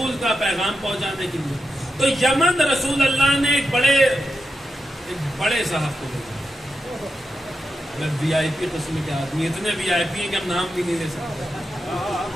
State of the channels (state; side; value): normal; both; correlation 0.87